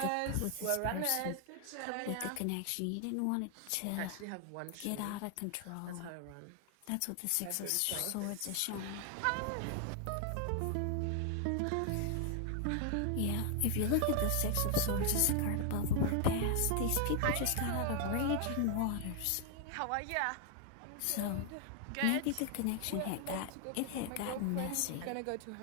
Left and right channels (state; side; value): different; both; correlation 0.00